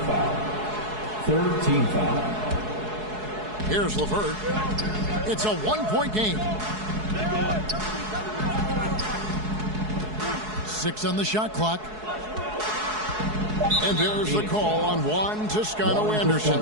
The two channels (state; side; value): late; left; 4.7 ms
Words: foul. Third team foul. Here's LeVert. It's a one-point game. 6 on the shot clock. And there's the call on Juan Toscano Anderson.